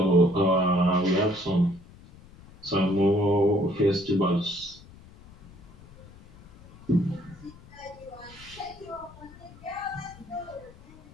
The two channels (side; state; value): left; noise; rumble, 22 dB below the sound